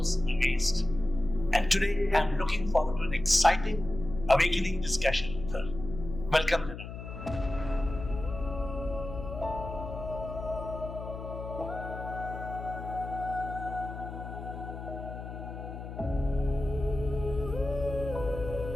amazed. And today, I'm looking forward to an exciting, awakening discussion with her. Welcome, Lenaa.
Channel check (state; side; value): noise; left; hum, 9 dB below the sound